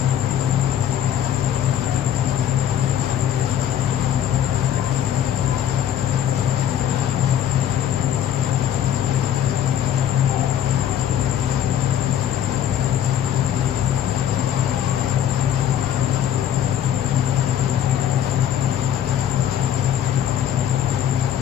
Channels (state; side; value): quieter; right; 10.3 dB